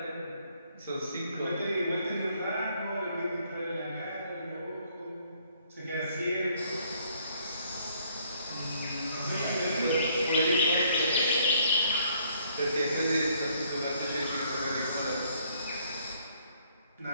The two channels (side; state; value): both; inverted; correlation -0.65